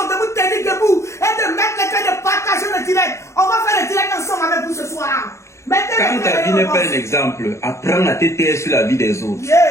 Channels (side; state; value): right; late; 0.14 ms